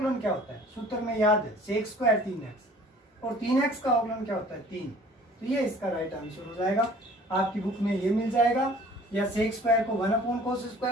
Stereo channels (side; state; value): both; normal; correlation 0.51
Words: क्या होता है? सूत्र में याद है, सेक स्क्वायर 3x, और 3x का अवकलन क्या होता है? 3। तो ये इसका राइट आंसर हो जाएगा। आपकी बुक में ये मिल जाएगा, या सेक स्क्वायर को 1 अपॉन कोस